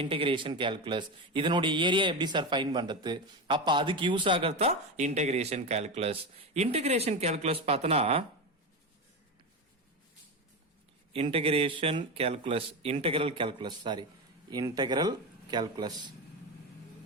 கால்குலஸ். இதனுடைய ஏரியா எப்படி சார் ஃபைண்ட் பண்றது? அப்ப அதுக்கு யூஸ் ஆகிறது தான் இன்டகிரேஷன் கால்குலஸ். இன்டகிரேஷன் கால்குலஸ் பார்த்தனா integral calculus.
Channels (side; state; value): both; normal; correlation 0.18